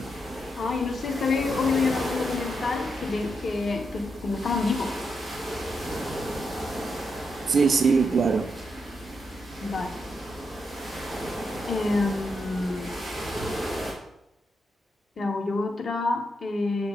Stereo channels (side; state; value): both; normal; correlation 0.83